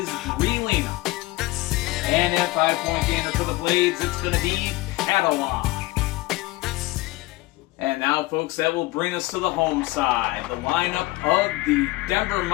Greelina. And at 5-point gainer for the Blades, it's going to be Catalan. And now, folks, that will bring us to the home side. The lineup of the Denver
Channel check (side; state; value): right; quieter; 20.0 dB